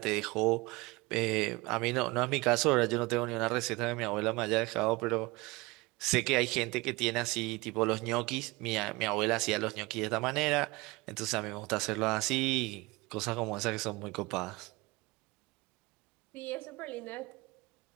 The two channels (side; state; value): left; quieter; 23.3 dB